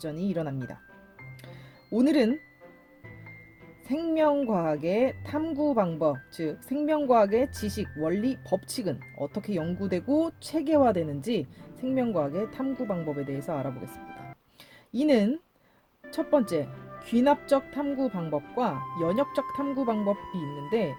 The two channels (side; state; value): both; identical; correlation 1.00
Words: 일어납니다. 오늘은 생명과학의 탐구 방법, 즉 생명과학의 지식, 원리, 법칙은 어떻게 연구되고 체계화되는지 생명과학의 탐구 방법에 대해서 알아보겠습니다. 이는 첫 번째, 귀납적 탐구 방법과 연역적 탐구 방법이 있는데,